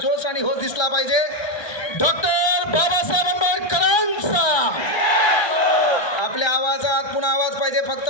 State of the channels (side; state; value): right; late; 1.3 ms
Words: आणि होश दिसला पाहिजे. डॉक्टर बाबासाहेब आंबेडकरांचा आपल्या आवाजात पुन्हा आवाज पाहिजे, फक्त